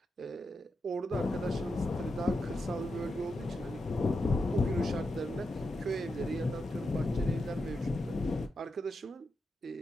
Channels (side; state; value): both; normal; correlation 0.86